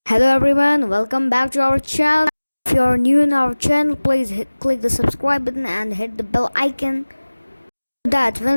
Hello everyone, welcome back to our channel. If you are new in our channel, please click the subscribe button and hit the bell icon so that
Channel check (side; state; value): both; inverted; correlation -1.00